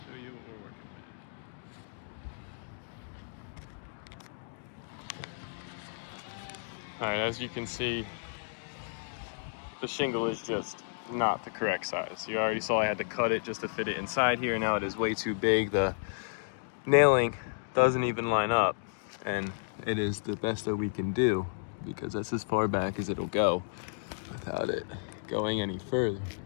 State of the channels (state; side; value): silent; right; digital silence